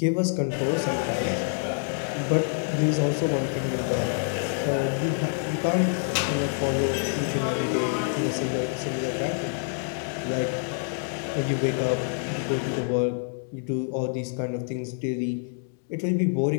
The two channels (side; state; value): right; silent; digital silence